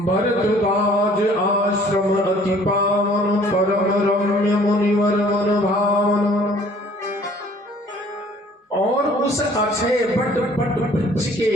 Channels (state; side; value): normal; both; correlation 0.55